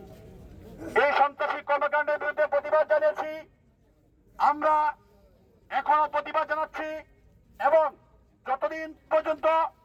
এই সন্ত্রাসী কর্মকাণ্ডের বিরুদ্ধে প্রতিবাদ জানিয়েছি, আমরা এখনো প্রতিবাদ জানাচ্ছি এবং যতদিন পর্যন্ত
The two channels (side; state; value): both; identical; correlation 1.00